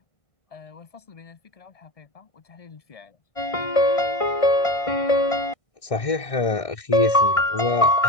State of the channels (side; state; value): right; late; 1.6 ms